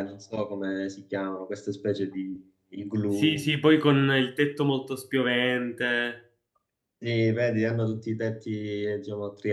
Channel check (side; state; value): both; identical; correlation 1.00